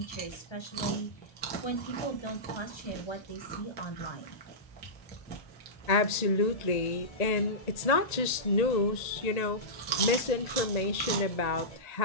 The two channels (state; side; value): late; right; 1.8 ms